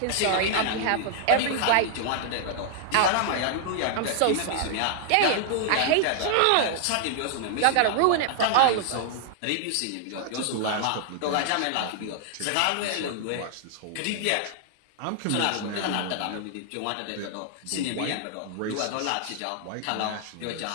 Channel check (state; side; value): different; both; correlation 0.00